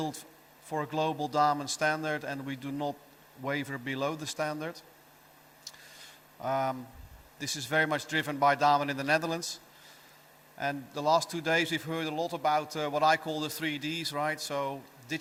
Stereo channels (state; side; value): identical; both; correlation 1.00